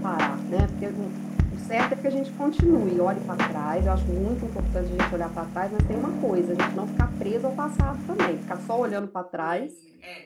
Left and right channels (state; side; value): identical; both; correlation 1.00